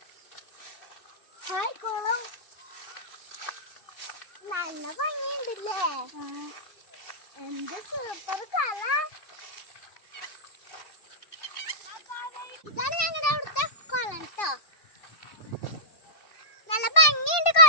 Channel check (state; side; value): late; right; 2.7 ms